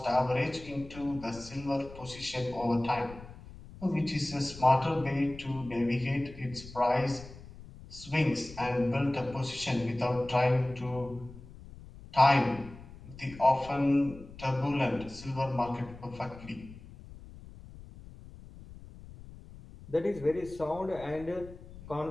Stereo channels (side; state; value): left; noise; rumble, 17 dB below the sound